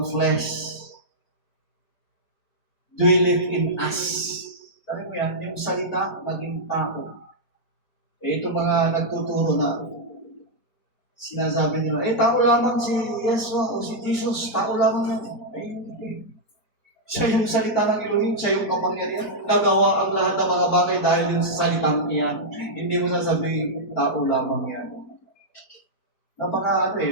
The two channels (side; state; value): right; late; 4.5 ms